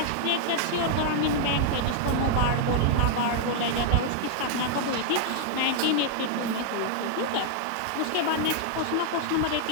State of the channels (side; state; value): both; different; correlation -0.01